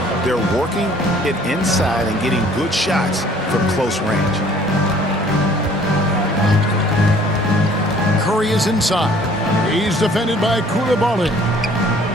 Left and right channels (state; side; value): normal; both; correlation 0.55